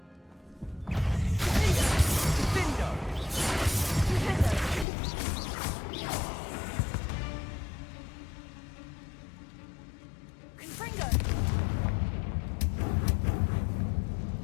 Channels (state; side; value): drops out; right; at 4.9 s